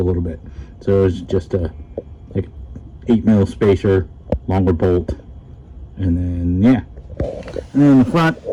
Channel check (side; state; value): both; identical; correlation 1.00